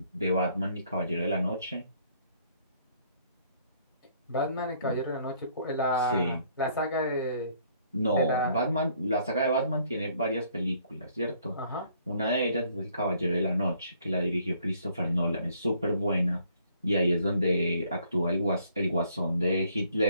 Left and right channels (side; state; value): both; inverted; correlation -0.64